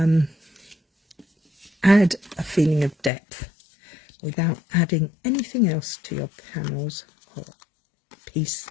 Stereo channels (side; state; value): right; drops out; at 3.1 s